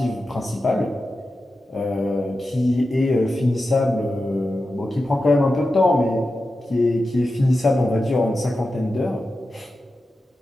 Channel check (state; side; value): normal; both; correlation 0.92